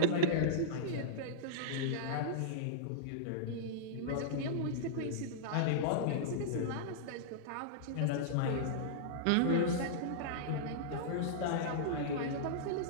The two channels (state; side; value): different; both; correlation -0.03